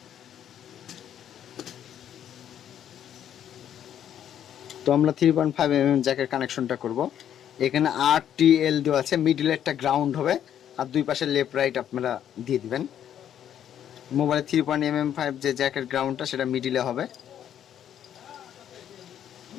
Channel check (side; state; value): right; quieter; 10.0 dB